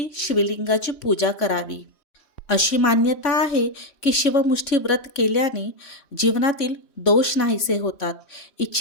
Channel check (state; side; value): late; right; 3.1 ms